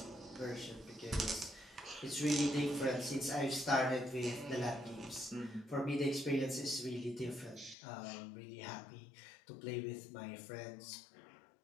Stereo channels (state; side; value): drops out; right; at 7.8 s